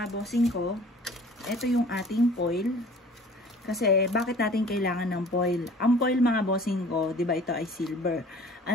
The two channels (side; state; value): both; normal; correlation 0.48